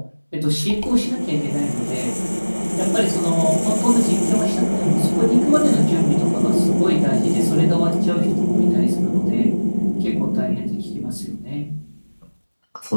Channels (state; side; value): inverted; both; correlation -1.00